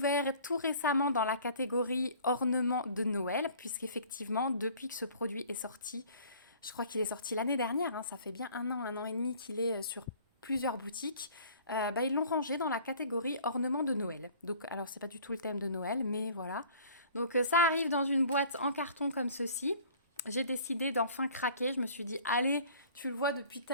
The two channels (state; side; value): inverted; both; correlation -0.50